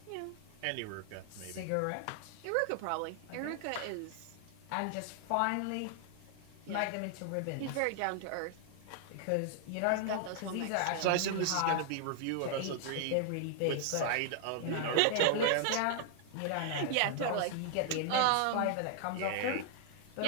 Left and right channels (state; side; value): different; both; correlation 0.00